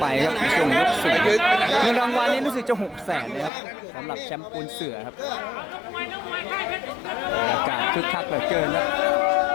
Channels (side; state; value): right; drops out; at 3.5 s